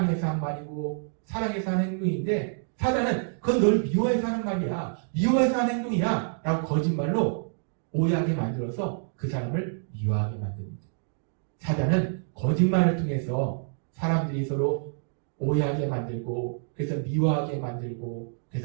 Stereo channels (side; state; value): left; silent; digital silence